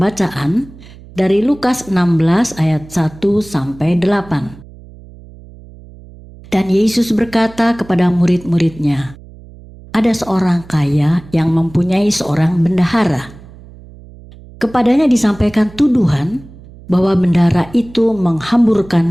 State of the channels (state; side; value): noise; right; hum, 20 dB below the sound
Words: dari Lukas 16 ayat 1 sampai 8. Dan Yesus berkata kepada murid-muridnya, ada seorang kaya yang mempunyai seorang bendahara. Kepadanya disampaikan tuduhan bahwa bendahara itu